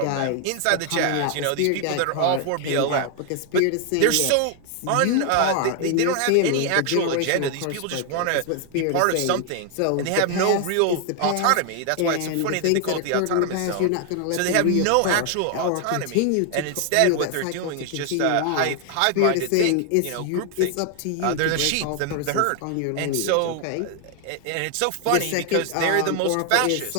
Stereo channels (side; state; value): both; different; correlation 0.00